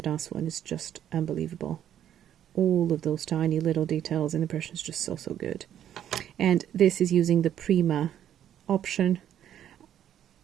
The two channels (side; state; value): left; quieter; 10.5 dB